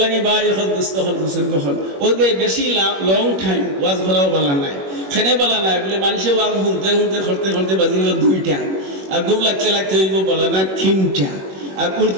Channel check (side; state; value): left; late; 21 ms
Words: লাগে ভাই এখন দোস্ত হল বুঝুন কখন ওদের বেশি লং টাইম ওয়াজ করাও বলা নাই, খেনে বলা নাই বলে মানুষে ওয়াজ শুনতে শুনতে করতে করতে বাজিব ২টা, আর ঘুম লাগতে লাগতে হইব বলা না ৩টা, আর